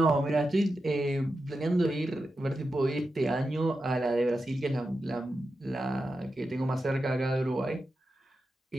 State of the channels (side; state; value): both; normal; correlation 0.90